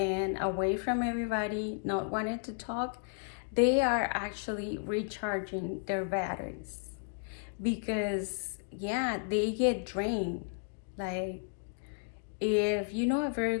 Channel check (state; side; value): silent; right; digital silence